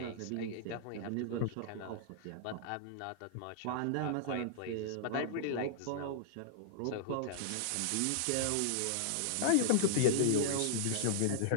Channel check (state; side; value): different; both; correlation -0.01